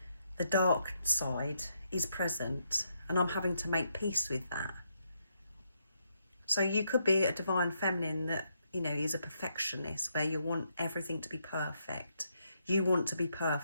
the dark side is present and I'm having to make peace with that. So you could be a Divine Feminine that, is a perfectionist, where you want everything to be perfect. You want to be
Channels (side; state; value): both; inverted; correlation -0.78